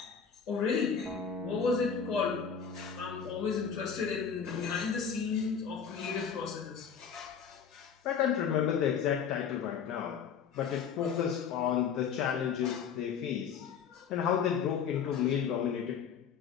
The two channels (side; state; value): right; quieter; 7.0 dB